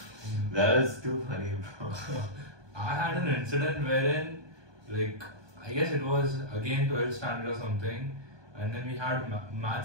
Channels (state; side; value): late; left; 1.2 ms